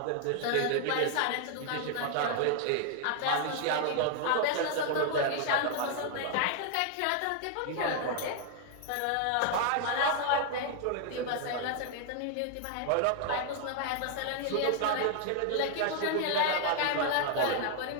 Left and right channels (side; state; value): both; different; correlation 0.00